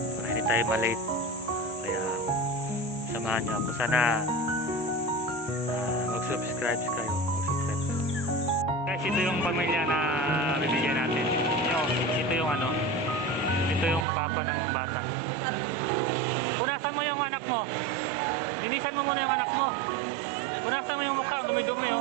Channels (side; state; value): left; drops out; at 14.1 s